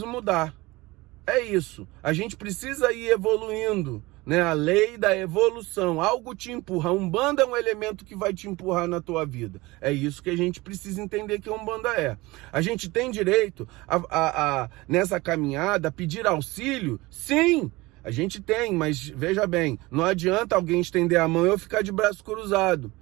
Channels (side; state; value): left; quieter; 21.4 dB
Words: mudar. É isso, a gente precisa ir evoluindo, né? A lei da evolução, algo te empurra. A Umbanda é um elemento que vai te empurrar na tua vida. É isso que a gente precisa entender que a Umbanda é. A gente tem direito nessa caminhada, pedir auxílio? Sim, a gente tem, mas veja bem, não adianta alguém estender a mão e eu ficar de braço cruzado.